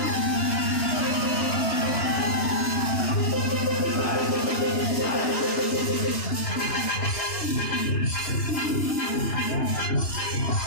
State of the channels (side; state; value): right; late; 2.9 ms